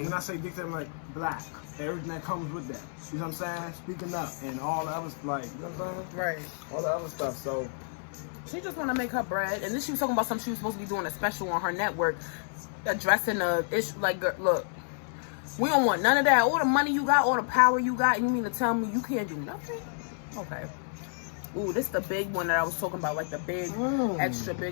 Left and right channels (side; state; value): right; silent; 58 dB below the other